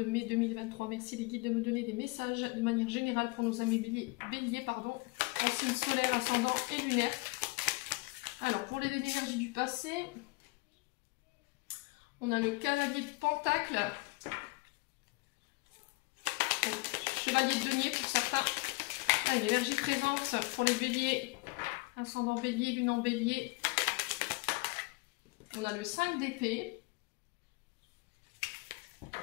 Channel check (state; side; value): quieter; right; 25.5 dB